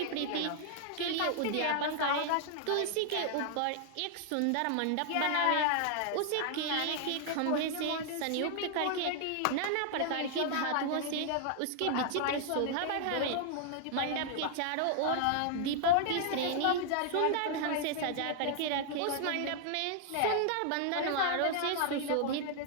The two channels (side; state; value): both; different; correlation 0.00